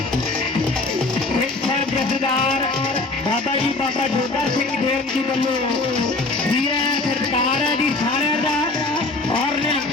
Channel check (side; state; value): right; quieter; 3.3 dB